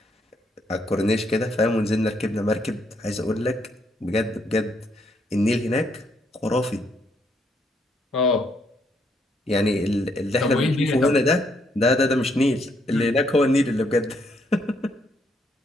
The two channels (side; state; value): both; normal; correlation 0.73